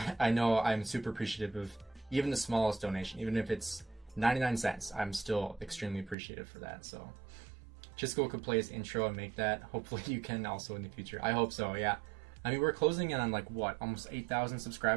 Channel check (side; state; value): left; drops out; at 6.2 s